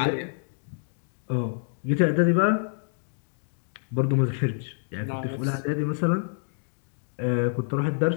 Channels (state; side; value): silent; right; digital silence